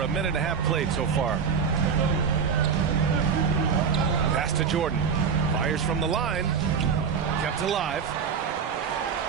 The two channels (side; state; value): left; quieter; 6.5 dB